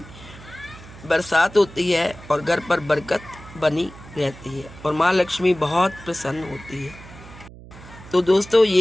बरसात होती है और घर पर बरकत बनी रहती है और माँ लक्ष्मी बहुत प्रसन्न होती है। तो दोस्तों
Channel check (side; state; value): right; noise; hum, 18 dB below the sound